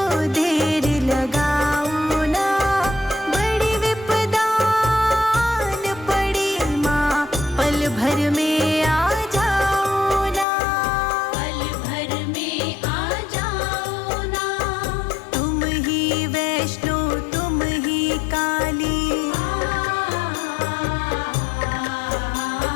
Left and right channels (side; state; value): right; drops out; at 10.5 s